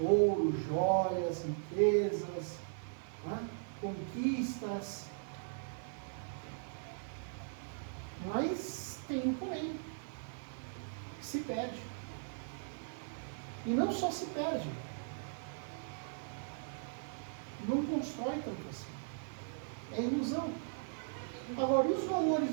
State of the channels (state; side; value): silent; left; 52 dB below the other